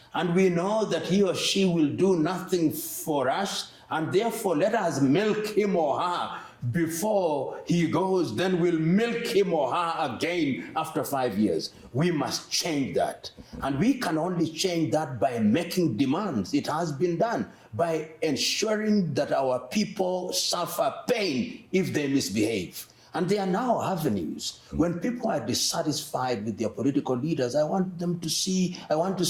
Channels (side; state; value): both; identical; correlation 1.00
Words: and we know that he or she will do nothing for us, and therefore let us milk him or her before he goes, then we'll milk him or her again after 5 years. We must change that. And we can only change that by making demands. It has been done by ensuring that our people suffer pain if they misbehave. And there are now avenues. When people are dissatisfied with their political leaders, I want to